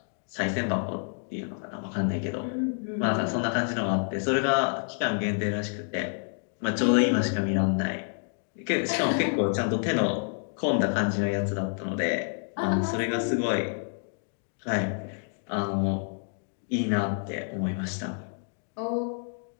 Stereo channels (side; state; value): right; silent; 59 dB below the other